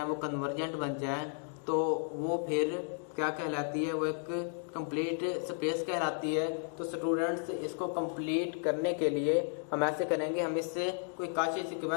वो कन्वर्जेंट बन जाएं, तो वो फिर क्या कहलाती है? वो एक कंप्लीट स्पेस कहलाती है। तो स्टूडेंट्स इसको कंप्लीट करने के लिए हम ऐसे करेंगे, हम इससे कोई काशी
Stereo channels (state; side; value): silent; right; 55 dB below the other